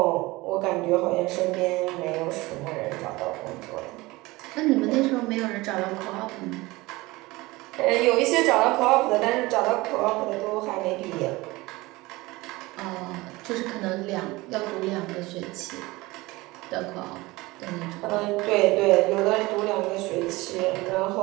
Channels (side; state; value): left; quieter; 21.2 dB